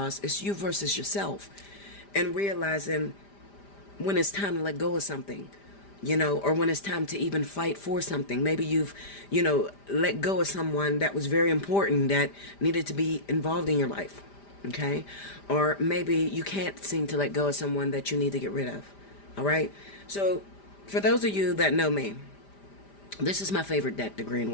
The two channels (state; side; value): late; right; 5.0 ms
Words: It's you versus yourself. And realizing when it's time to let go of something, or when it's time to even fight for something. Maybe you've, let go of someone that was very important that needed to be involved in your life. Okay? Or maybe you can't seem to let go of someone that you need to get rid of. All right? So for those of you that know me, This is my favorite deck, the Green